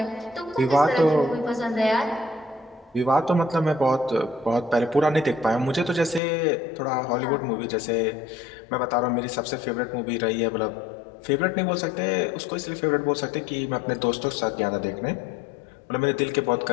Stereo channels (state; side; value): drops out; right; at 6.2 s